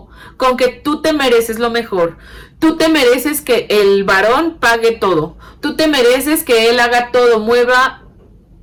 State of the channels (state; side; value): identical; both; correlation 1.00